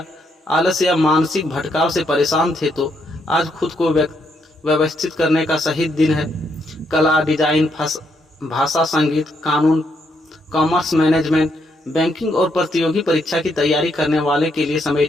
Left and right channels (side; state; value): both; normal; correlation 0.76